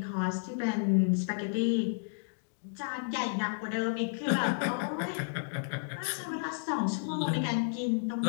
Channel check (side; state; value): right; silent; digital silence